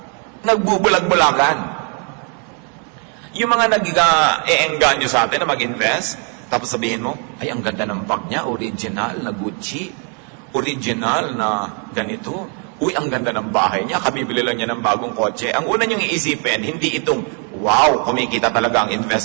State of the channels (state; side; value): quieter; left; 39.4 dB